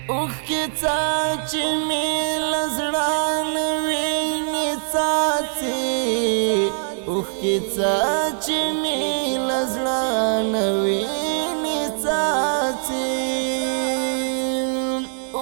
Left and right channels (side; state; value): left; silent; digital silence